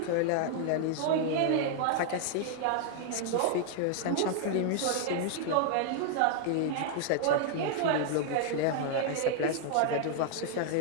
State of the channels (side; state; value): both; different; correlation 0.00